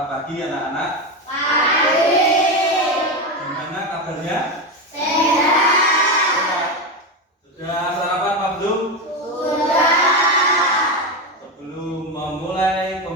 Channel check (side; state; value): both; normal; correlation 0.15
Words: pagi anak-anak. Pagi. Gimana kabarnya? Sehat. Sudah sarapan Pak belum? Sudah. Sebelum memulai